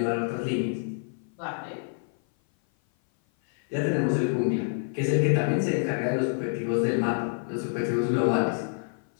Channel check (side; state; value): right; silent; 56 dB below the other